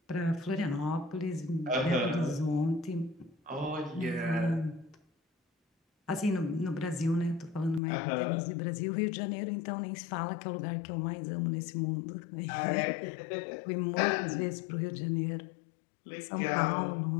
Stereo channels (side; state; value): right; drops out; at 7.8 s